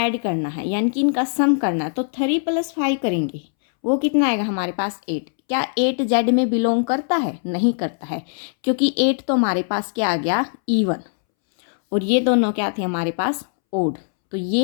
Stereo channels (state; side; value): silent; right; 65 dB below the other